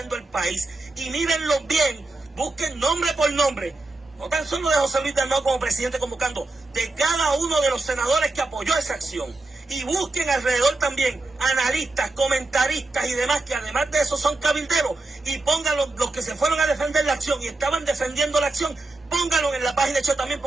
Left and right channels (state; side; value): quieter; left; 3.0 dB